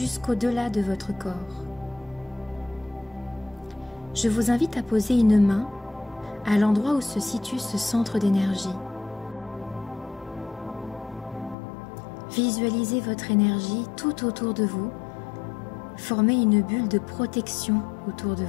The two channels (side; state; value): right; drops out; at 11.6 s